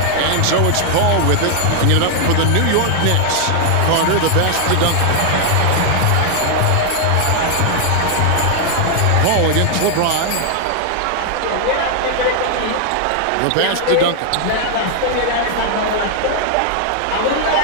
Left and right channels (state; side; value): different; both; correlation 0.00